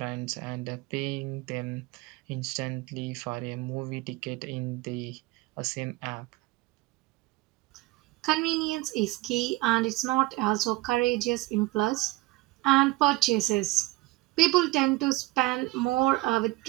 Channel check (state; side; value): quieter; left; 20.4 dB